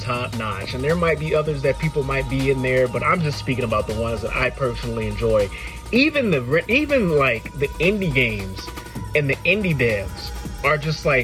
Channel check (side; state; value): both; identical; correlation 1.00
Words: notch, and there might be others that people might be in there, but I'm just speaking about the ones that I personally enjoy. Even like the indie games and the indie devs are just,